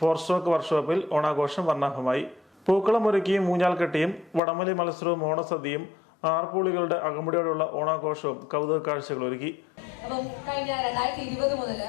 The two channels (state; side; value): drops out; right; at 4.4 s